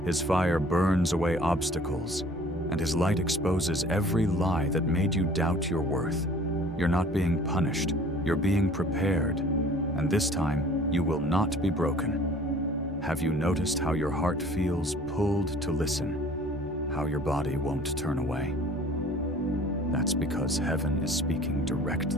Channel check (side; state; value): both; normal; correlation 0.50